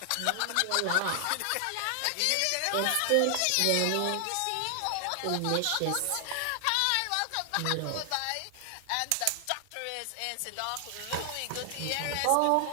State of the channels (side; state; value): both; different; correlation 0.00